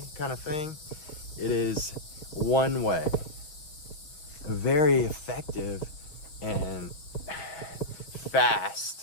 kind of thing. It is one way, a very effective and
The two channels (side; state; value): right; late; 6.2 ms